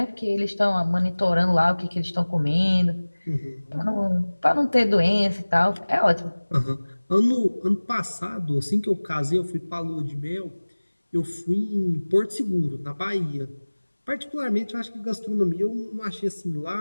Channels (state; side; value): inverted; both; correlation -1.00